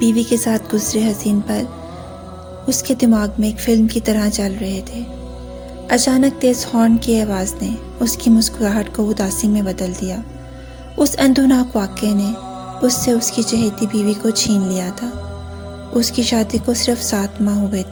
کے ساتھ گزرے حسین پل اس کے دماغ میں ایک فلم کی طرح چل رہے تھے۔ اچانک تیز ہارن کی آواز نے اس کی مسکراہٹ کو اداسی میں بدل دیا۔ اس اندوناک واقعے نے اس سے اس کی چہیتی بیوی کو چھین لیا تھا۔ اس کی شادی کو صرف 7 ماہ ہوئے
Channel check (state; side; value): identical; both; correlation 1.00